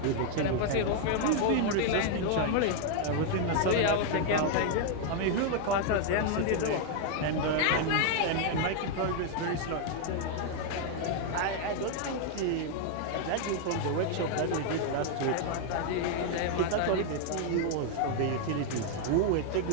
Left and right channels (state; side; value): different; both; correlation 0.00